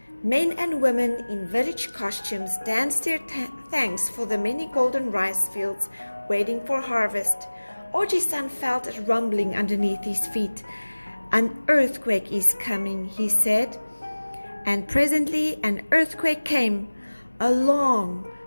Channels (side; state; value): both; inverted; correlation -1.00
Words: men and women in village costumes danced their thanks for the many golden rice fields waiting for harvest. Oji-san felt a rumbling underneath his feet. An earthquake is coming, he said. And presently an earthquake came, a long,